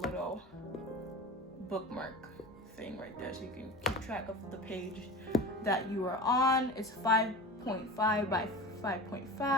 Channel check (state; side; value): normal; both; correlation 0.33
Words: bookmark thing right there so you can keep track of the page that you are on. It's 5.5 by